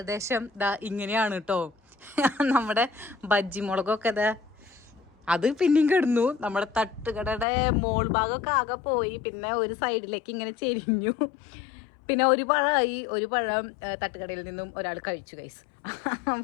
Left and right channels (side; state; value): right; drops out; at 7.5 s